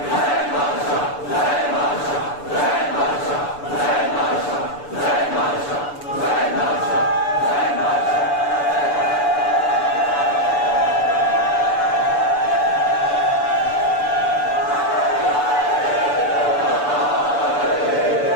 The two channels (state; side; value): late; right; 6.9 ms